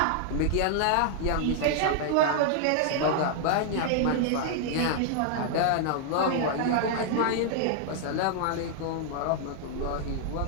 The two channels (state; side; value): different; both; correlation 0.00